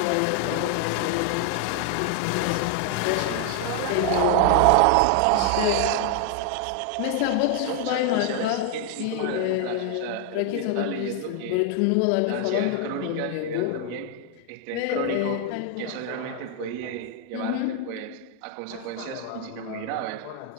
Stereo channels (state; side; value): different; both; correlation 0.00